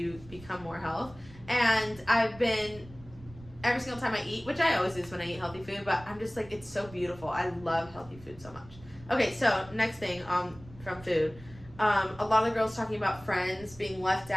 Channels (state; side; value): noise; right; rumble, 20 dB below the sound